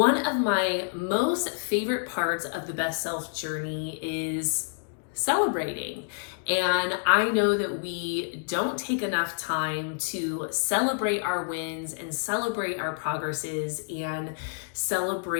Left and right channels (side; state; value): right; silent; digital silence